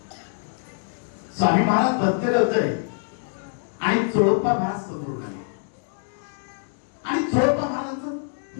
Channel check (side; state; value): right; silent; digital silence